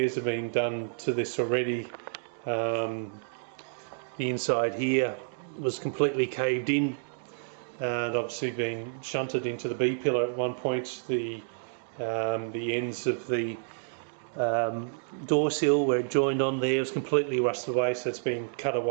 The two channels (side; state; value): left; silent; digital silence